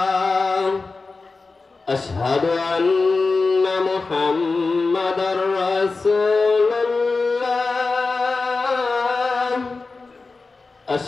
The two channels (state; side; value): quieter; right; 3.9 dB